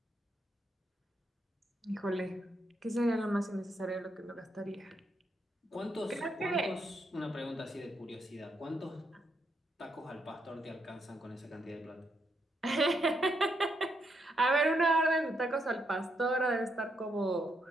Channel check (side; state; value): both; normal; correlation 0.78